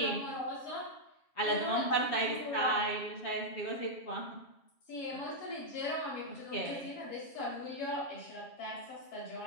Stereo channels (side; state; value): right; late; 7.3 ms